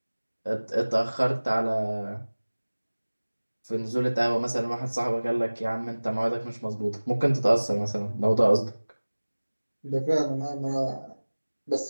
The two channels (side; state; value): both; inverted; correlation -1.00